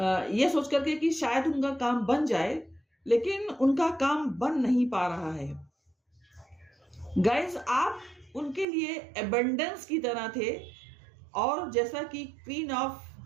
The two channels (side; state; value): left; drops out; at 8.7 s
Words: ये सोच करके कि शायद उनका काम बन जाए, लेकिन उनका काम बन नहीं पा रहा है। गाइस, आप उनके लिए एबंडेंस की तरह थे, और जैसा कि क्वीन ऑफ